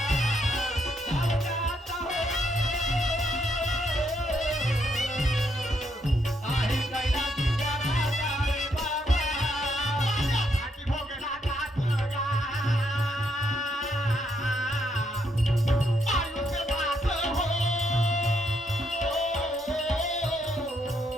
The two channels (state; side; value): normal; both; correlation 0.76